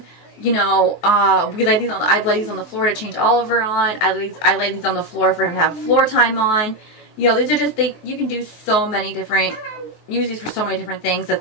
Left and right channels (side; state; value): right; late; 23 ms